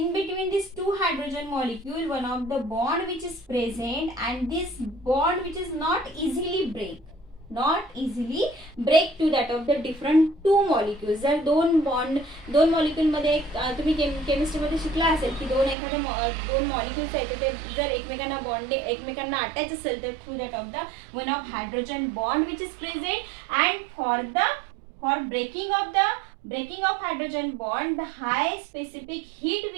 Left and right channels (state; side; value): drops out; left; at 15.8 s